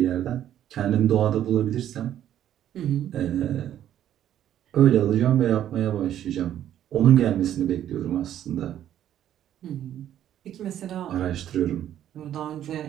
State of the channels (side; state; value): left; quieter; 11.2 dB